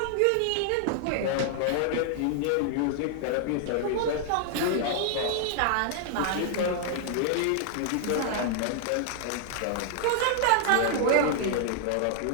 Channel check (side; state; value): both; different; correlation 0.00